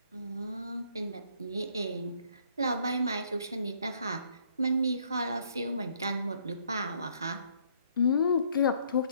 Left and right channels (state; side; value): inverted; both; correlation -0.65